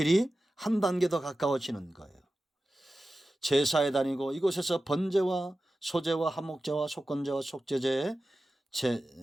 한 단계 더 가까워지는 거예요. 제사에 다니고 이곳에서 번제와 소제와 한목제와 속건제와 속죄제의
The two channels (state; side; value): normal; both; correlation 0.94